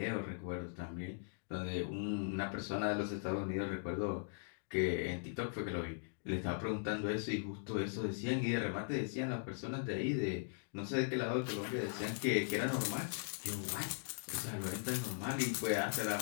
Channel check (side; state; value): right; silent; digital silence